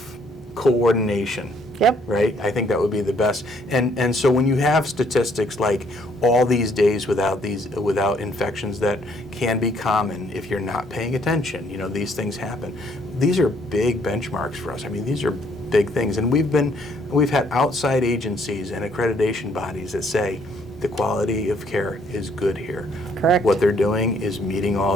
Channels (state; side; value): noise; right; hum, 26 dB below the sound